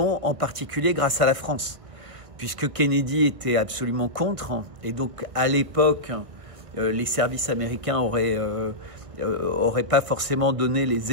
en particulier grâce à la France, puisque Kennedy était absolument contre. Et donc, à l'époque, les services américains auraient pas forcément donné les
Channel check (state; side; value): late; left; 1.6 ms